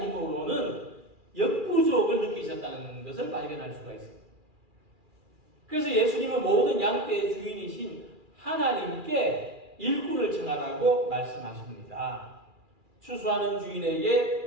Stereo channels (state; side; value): late; left; 2.4 ms